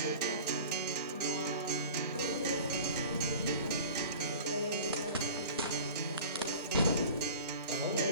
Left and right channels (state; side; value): inverted; both; correlation -0.40